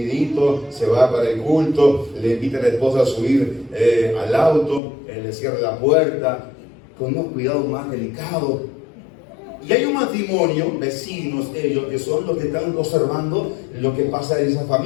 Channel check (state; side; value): drops out; right; at 4.8 s